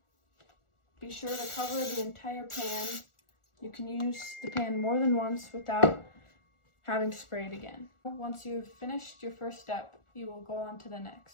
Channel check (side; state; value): right; late; 1.4 ms